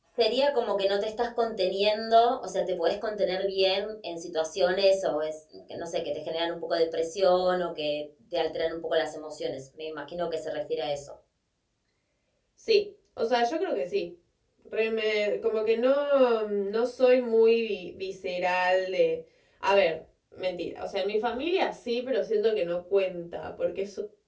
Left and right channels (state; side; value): identical; both; correlation 1.00